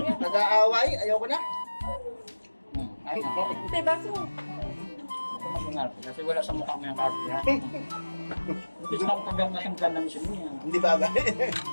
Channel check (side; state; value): both; inverted; correlation -1.00